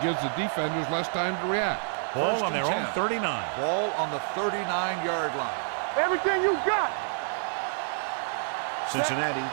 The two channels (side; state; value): left; silent; digital silence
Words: gives the defenders less time to react. Ball First on and their 10. own 39. Ball on the 39-yard line. Everything you got. Cincinnati